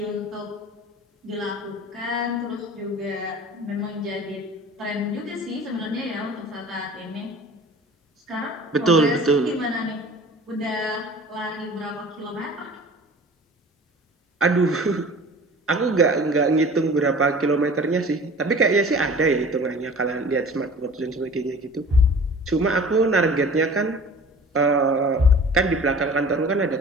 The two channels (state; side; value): normal; both; correlation 0.43